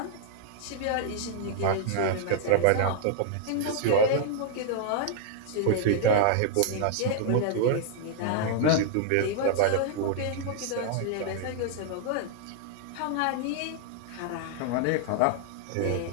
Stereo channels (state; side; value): different; both; correlation -0.01